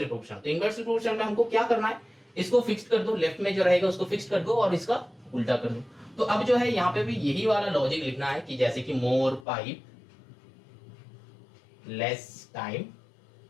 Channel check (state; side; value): drops out; right; at 9.5 s